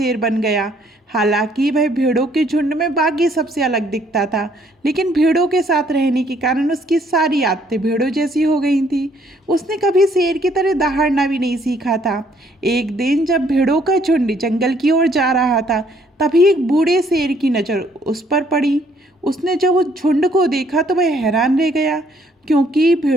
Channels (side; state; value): both; normal; correlation 0.66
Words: बन गया। हालांकि वह भेड़ों के झुंड में बाकी सबसे अलग दिखता था, लेकिन भेड़ों के साथ रहने के कारण उसकी सारी आदतें भेड़ों जैसी हो गई थी। उसने कभी शेर की तरह दहाड़ना भी नहीं सीखा था। एक दिन जब भेड़ों का झुंड जंगल की ओर जा रहा था, तभी एक बूढ़े शेर की नज़र उस पर पड़ी। उसने जब उस झुंड को देखा तो वह हैरान रह गया, क्योंकि